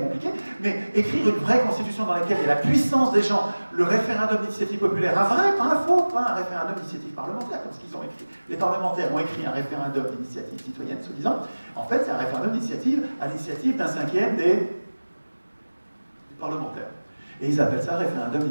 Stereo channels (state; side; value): inverted; both; correlation -1.00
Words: mais écrire une vraie constitution dans laquelle il y a la puissance des gens, le référendum d'initiative populaire, un vrai, pas un faux, pas un référendum d'initiative parlementaire, comme ce qu'ils ont écrit. Les parlementaires ont écrit un référendum d'initiative citoyenne, soi-disant. En fait, c'est un référendum d'initiative à l'initiative d'un cinquième des parlementaires. Et ils appellent ça référendum